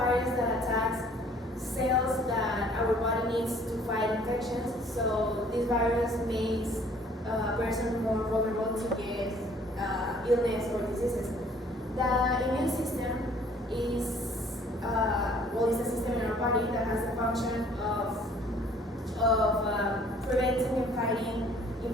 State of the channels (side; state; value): both; normal; correlation 0.57